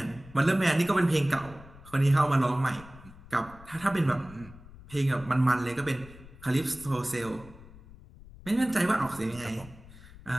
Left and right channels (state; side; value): noise; left; rumble, 19 dB below the sound